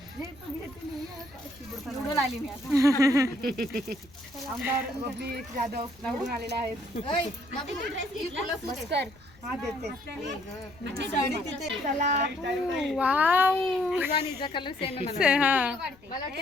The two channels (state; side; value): noise; left; rumble, 26 dB below the sound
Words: निवडून आली मी आमदार बबली जाधव निवडून आलेले आहेत. बस कर. हा देते. तुझा कलर सेम आहे